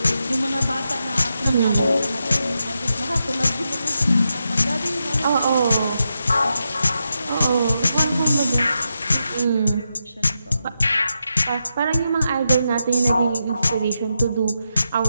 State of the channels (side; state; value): both; inverted; correlation -0.86